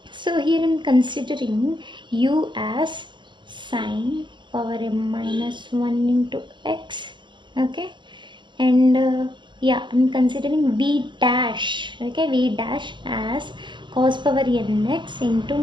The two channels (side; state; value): left; late; 0.23 ms